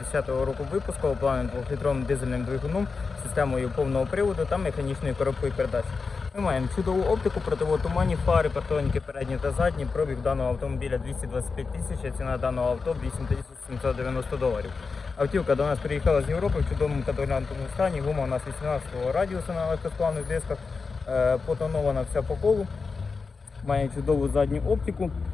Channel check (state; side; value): quieter; right; 4.7 dB